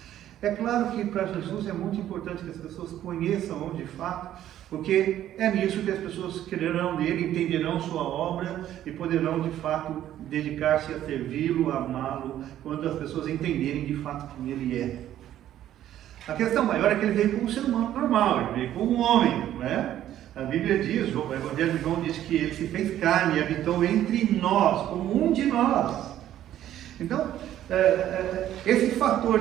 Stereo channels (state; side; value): quieter; left; 12.0 dB